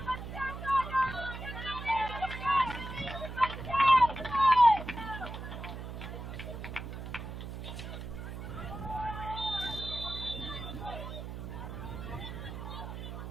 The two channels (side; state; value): right; noise; hum, 8 dB below the sound